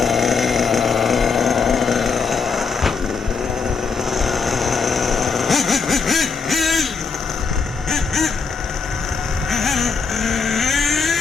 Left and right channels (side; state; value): right; quieter; 5.2 dB